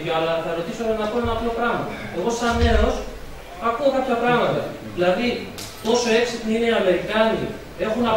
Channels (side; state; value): both; identical; correlation 1.00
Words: αλλά θα ρωτήσω να πω ένα απλό πράγμα. Εγώ, σαν νέος, ακούω κάποια πράγματα. Δηλαδή, τόσο έξυπνοι είναι οι Αμερικάνοι, έχουν